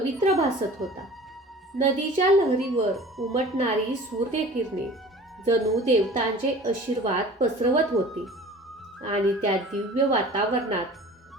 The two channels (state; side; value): normal; both; correlation 0.43